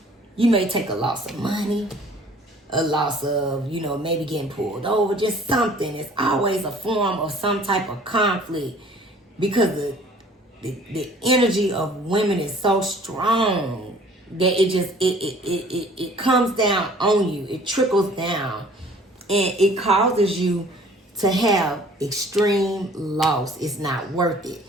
you may take a loss of money, a loss of, you know, maybe getting pulled over, just something. It's always a form of some type of conflict because the energy of women is so strong that it comes down on you. It trickles down and it causes you to have extreme loss. It's not worth it.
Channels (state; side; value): normal; both; correlation 0.53